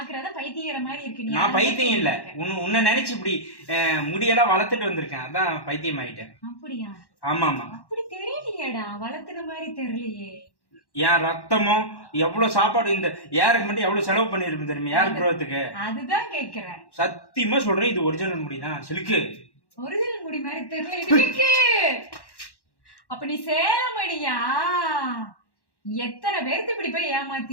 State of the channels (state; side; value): late; right; 1.1 ms